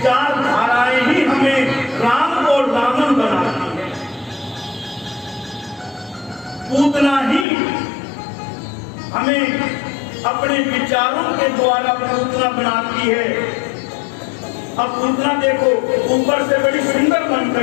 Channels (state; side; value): drops out; right; at 7.5 s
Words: ही हमें राम और रावण बनाती है, पूतना ही हमें अपने विचारों के द्वारा पूतना बनाती है। अब पूतना देखो ऊपर से बड़ी सुंदर बन